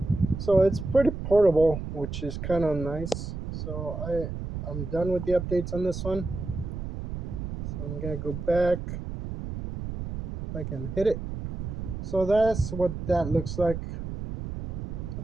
so it's pretty portable, which is kind of nice. So I'm done with the updates on this one. So I'm gonna go back if I can hit it. So that's what that looks like. So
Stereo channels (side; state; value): right; noise; rumble, 6 dB below the sound